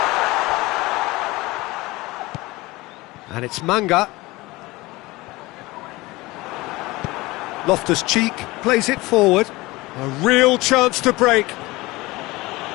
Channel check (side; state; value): right; quieter; 21.1 dB